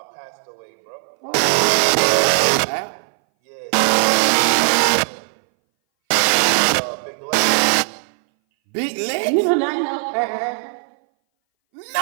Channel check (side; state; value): left; silent; 61 dB below the other